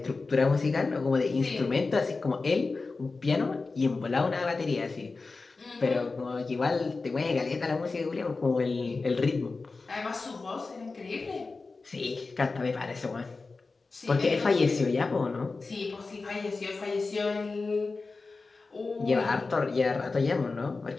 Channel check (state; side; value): quieter; right; 3.9 dB